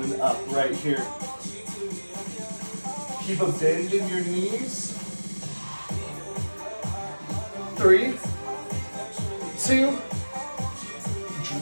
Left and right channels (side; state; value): both; inverted; correlation -1.00